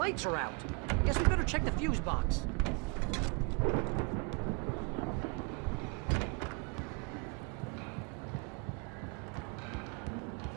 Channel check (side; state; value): left; quieter; 32.7 dB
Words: are out. Guess we better check the fuse box.